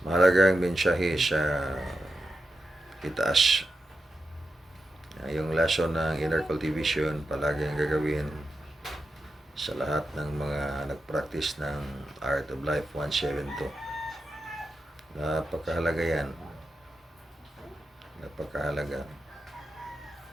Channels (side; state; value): both; normal; correlation 0.89